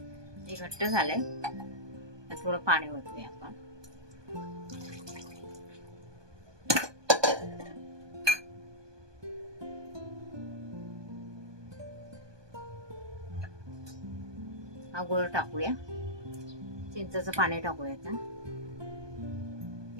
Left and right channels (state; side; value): late; left; 1.2 ms